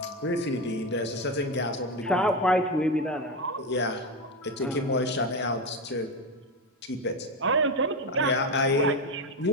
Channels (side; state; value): both; normal; correlation 0.14